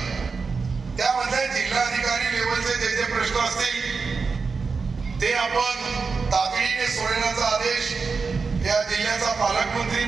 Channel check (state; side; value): quieter; left; 4.8 dB